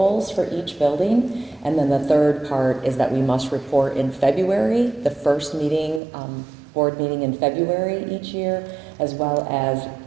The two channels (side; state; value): left; drops out; at 6.0 s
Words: for each building. And then the third part is that we must report in February, the first meeting, board meeting in February each year, as well as